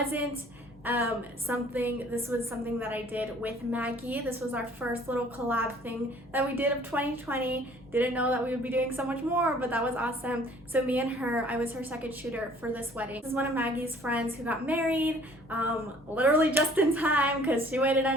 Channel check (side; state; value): both; normal; correlation 0.54